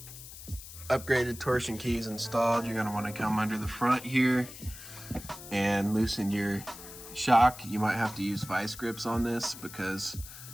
upgraded torsion keys installed, you're going to want to come under the front here and loosen your shock. You might have to use vice grips on this because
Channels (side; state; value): left; noise; hiss, 14 dB below the sound